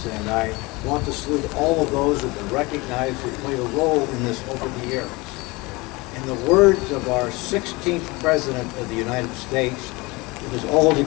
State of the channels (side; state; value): right; quieter; 24.1 dB